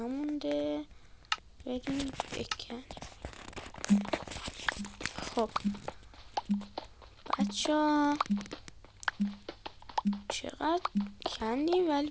بریم بکن. خب بچه چقدر کندیم ولی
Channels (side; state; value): both; identical; correlation 1.00